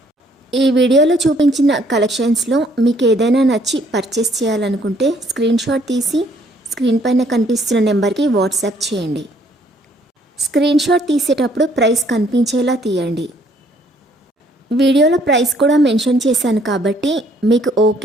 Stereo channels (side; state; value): both; normal; correlation 0.64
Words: ఈ వీడియోలో చూపించిన కలెక్షన్స్లో మీకు ఏదైనా నచ్చి పర్చేస్ చేయాలనుకుంటే స్క్రీన్ షాట్ తీసి స్క్రీన్ పైన కనిపిస్తున్న నెంబర్కి వాట్సాప్ చేయండి. స్క్రీన్ షాట్ తీసేటప్పుడు ప్రైస్ కనిపించేలా తీయండి. వీడియోలో ప్రైస్ కూడా మెన్షన్ చేశాను కాబట్టి మీకు